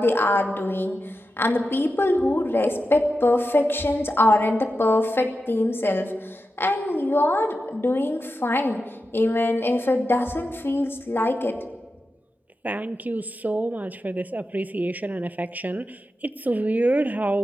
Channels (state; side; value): normal; both; correlation 0.90